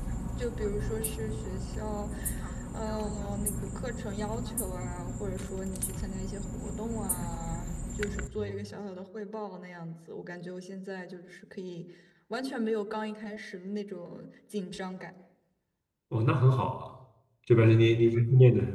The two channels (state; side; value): identical; both; correlation 1.00